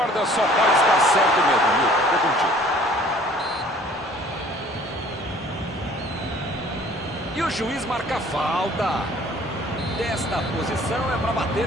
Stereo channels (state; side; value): normal; both; correlation 0.53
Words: só pode estar certo mesmo, Milton. Tô contigo. E o juiz marca falta. Desta posição é para bater